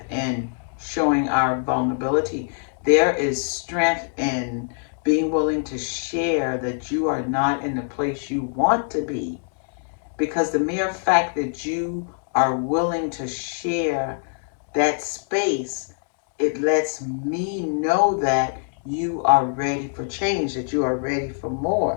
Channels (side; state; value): right; silent; digital silence